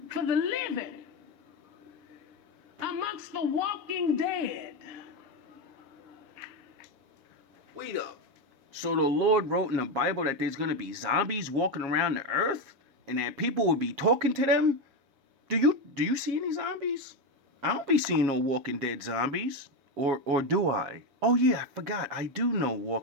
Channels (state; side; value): late; left; 7.4 ms